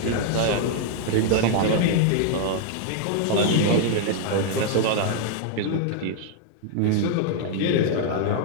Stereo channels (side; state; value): both; different; correlation 0.00